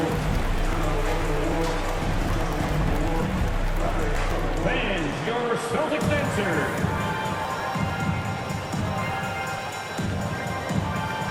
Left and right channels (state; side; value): identical; both; correlation 1.00